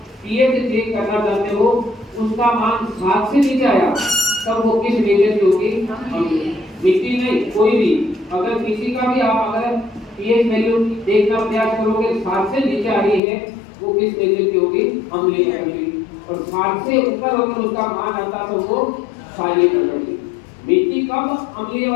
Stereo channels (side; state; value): right; drops out; at 13.2 s